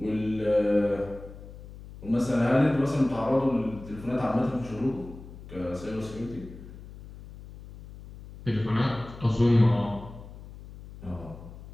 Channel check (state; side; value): noise; left; hum, 16 dB below the sound